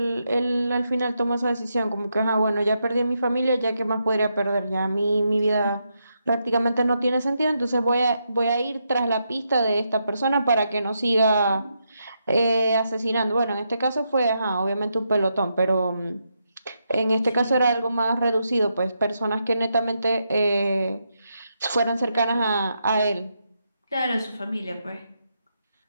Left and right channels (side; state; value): both; inverted; correlation -0.82